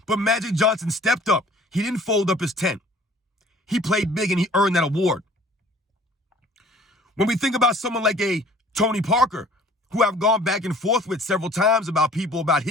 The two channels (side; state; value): both; normal; correlation 0.51